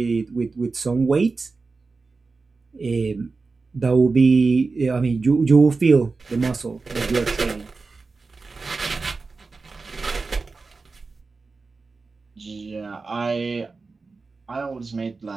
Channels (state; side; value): quieter; left; 4.1 dB